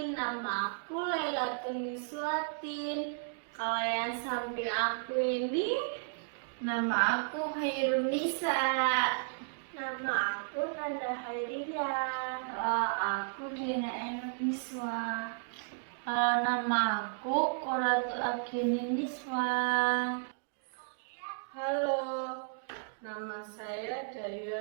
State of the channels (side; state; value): left; silent; digital silence